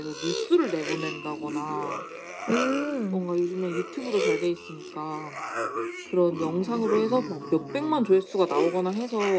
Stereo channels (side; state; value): both; identical; correlation 1.00